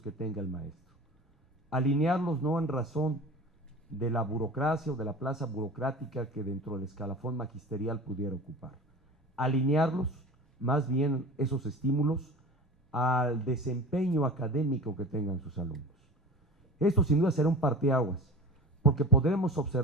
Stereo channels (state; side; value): normal; both; correlation 0.35